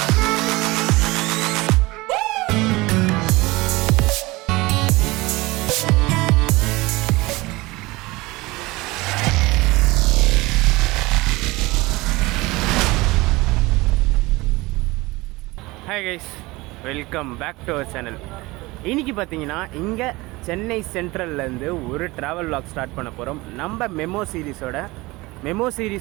Hi guys, welcome back to our channel. இன்றைக்கி பார்த்தீங்கன்னா இங்கே சென்னை சென்ட்ரல்லேருந்து ஒரு ட்ராவல் vlog ஸ்டார்ட் பண்ண போகிறோம். நம்ம மெமோ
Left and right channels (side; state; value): left; quieter; 21.7 dB